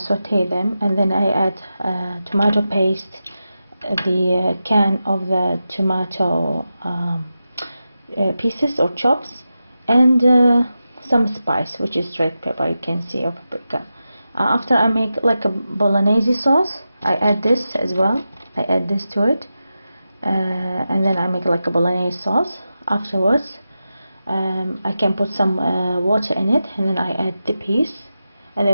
them, and then I add tomato paste, the can of the tomato pieces or chops, and some spice, which is red pepper, you can see, or paprika. After I make like a bolognese sauce, I add this as well. I add this to it, and then I make like a bolognese sauce. Afterwards, I can put some water in it, and then I add the peas, and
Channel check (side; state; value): both; inverted; correlation -0.91